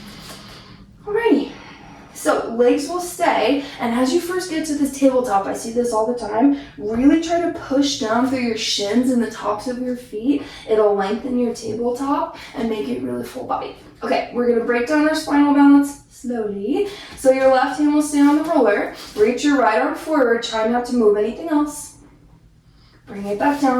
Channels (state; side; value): identical; both; correlation 1.00